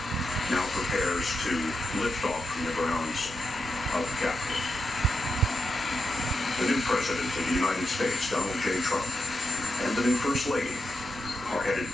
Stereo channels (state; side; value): normal; both; correlation 0.86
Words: now prepares to lift off from the grounds of the Capitol. The new President of the United States, Donald J. Trump, and the new First Lady are headed